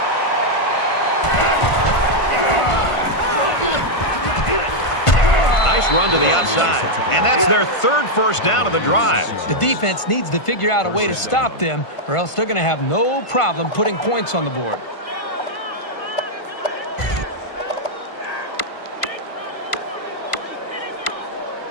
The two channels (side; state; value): right; late; 1.5 ms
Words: Nice run to the outside. And that's their third first down of the drive. The defense needs to figure out a way to stop them, or else they're going to have no problem putting points on the board.